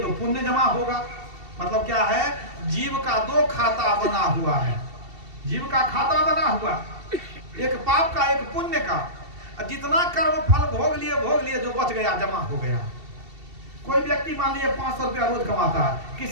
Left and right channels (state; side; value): late; left; 2.7 ms